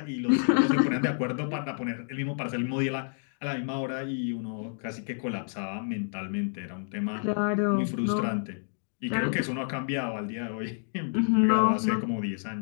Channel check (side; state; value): right; silent; digital silence